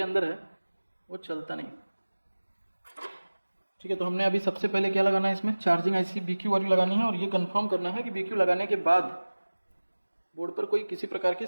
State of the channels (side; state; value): both; inverted; correlation -1.00